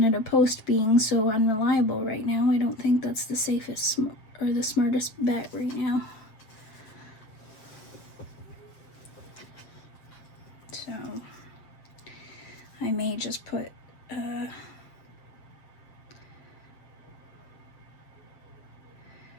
Post being so unreliable right now, I don't think that's the safest or the smartest bet right now. So I may just put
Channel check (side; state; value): right; late; 7.4 ms